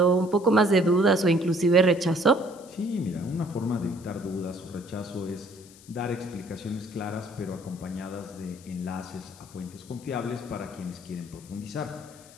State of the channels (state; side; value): noise; left; hiss, 23 dB below the sound